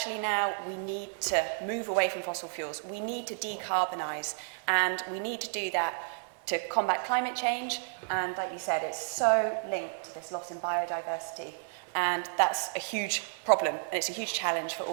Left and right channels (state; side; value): silent; left; 57 dB below the other